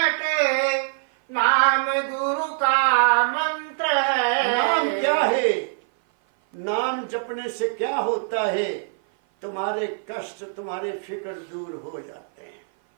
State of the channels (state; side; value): silent; left; 56 dB below the other